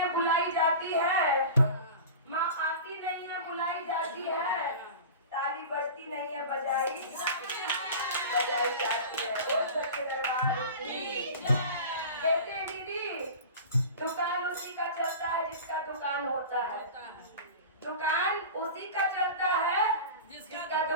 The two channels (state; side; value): inverted; both; correlation -0.34